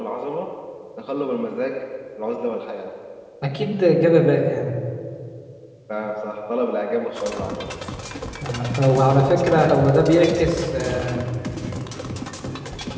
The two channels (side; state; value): both; identical; correlation 1.00